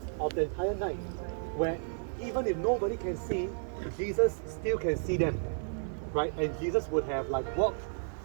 of the entire night, where even if nobody can see, Jesus still can see them, right? And Jesus would have like walked,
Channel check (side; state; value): left; silent; digital silence